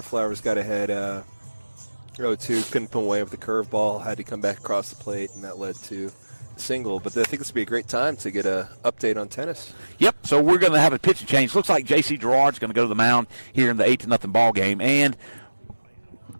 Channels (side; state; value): both; inverted; correlation -1.00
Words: Flowers got ahead 0-2, couldn't put away with the curveball, had to come back across the plate, and that led to a single. But I think this would be a great time to get an update on tennis. Yep, so we're going to have a pitching change. Looks like J.C. Gerard's going to go to the mound here in the 8-0 ball game. And